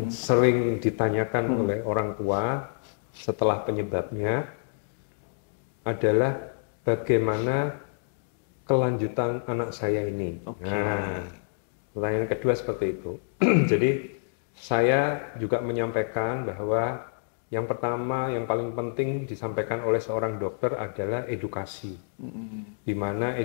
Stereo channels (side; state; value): right; silent; digital silence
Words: sering ditanyakan oleh orang tua setelah penyebabnya adalah bagaimana kelanjutan anak saya ini. Nah, pertanyaan kedua seperti itu. Jadi saya juga menyampaikan bahwa yang pertama, yang paling penting disampaikan oleh seorang dokter adalah edukasi, di mana